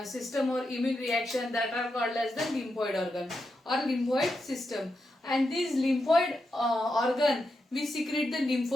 or immune reaction that are called as the lymphoid organ or lymphoid system. And this lymphoid organ we secrete the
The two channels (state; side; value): normal; both; correlation 0.86